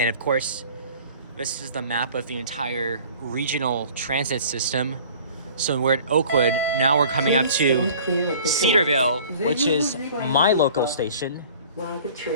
Of course, this is the map of the entire regional transit system. So we're at Oakwood. Now we're coming up to Cedarville, which is my local station. While the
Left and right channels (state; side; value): inverted; both; correlation -0.48